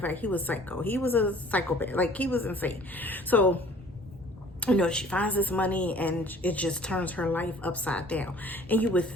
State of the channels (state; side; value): normal; both; correlation 0.52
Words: fact, he was psycho. He was a psychopath. Like, he was insane. So she finds this money, and it just turns her life upside down.